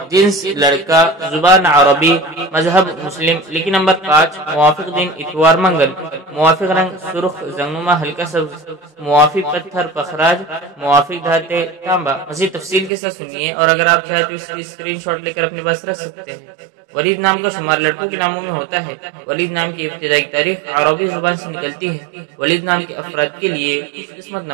جنس لڑکا، زبان عربی، مذہب مسلم، لکی نمبر 5، موافق دن اتوار منگل، موافق رنگ سرخ زنگنما ہلکا سبز، موافق پتھر پخراج، موافق دھاتے تانبا۔ مزید تفصیل کے ساتھ سنیے اور اگر آپ چاہیں تو اس کی اسکرین شاٹ لے کر اپنے پاس رکھ سکتے ہیں۔ ولید نام کا شمار لڑکوں کے ناموں میں ہوتا ہے۔ ولید نام کی ابتدائی تاریخ عربی زبان سے نکلتی ہے۔ ولید نام کے افراد کے لیے خوش قسمت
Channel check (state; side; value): drops out; left; at 12.9 s